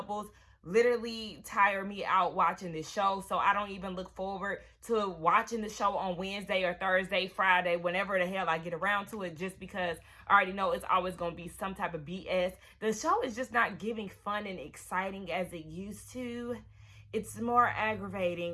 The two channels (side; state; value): both; identical; correlation 1.00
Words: literally tire me out watching this show. So I don't even look forward to watching the show on Wednesday or Thursday, Friday, whenever the hell I get around to it, just because I already know it's always going to be some type of BS. The show is just not giving fun and exciting as it used to. It's more